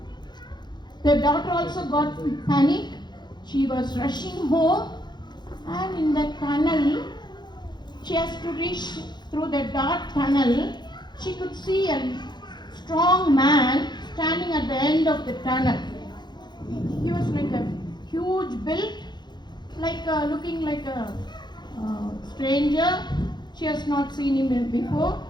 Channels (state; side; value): late; right; 0.21 ms